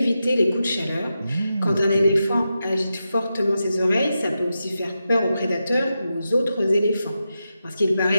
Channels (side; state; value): both; inverted; correlation -0.89